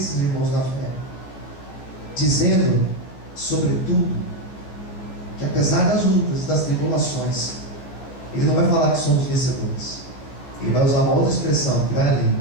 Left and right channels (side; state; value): right; late; 14 ms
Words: irmãos na fé, dizendo, sobretudo, que apesar das lutas, das tribulações, ele não vai falar que somos vencedores. Ele vai usar uma outra expressão que vai